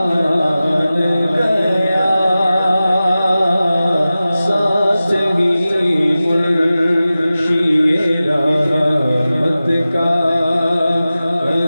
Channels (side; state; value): both; inverted; correlation -0.95